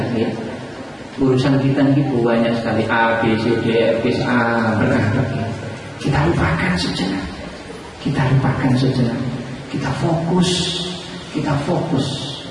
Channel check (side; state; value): both; identical; correlation 1.00